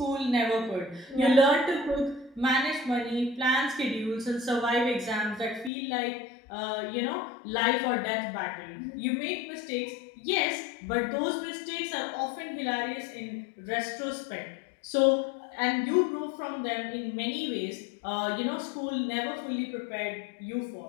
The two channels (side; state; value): right; drops out; at 5.7 s